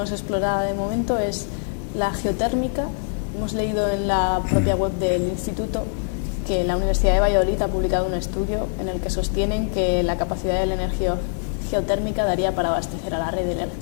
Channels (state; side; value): silent; right; digital silence